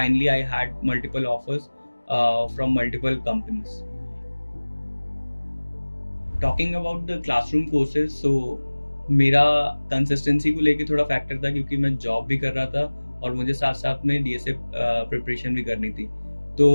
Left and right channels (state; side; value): inverted; both; correlation -1.00